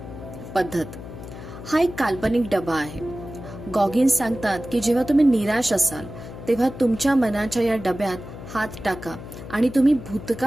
पद्धत. हा एक काल्पनिक डबा आहे. गॉगिन्स सांगतात की जेव्हा तुम्ही निराश असाल, तेव्हा तुमच्या मनाच्या या डब्यात हात टाका आणि तुम्ही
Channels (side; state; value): left; noise; hum, 12 dB below the sound